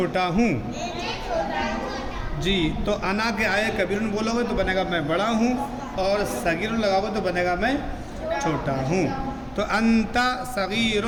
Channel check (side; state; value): both; identical; correlation 1.00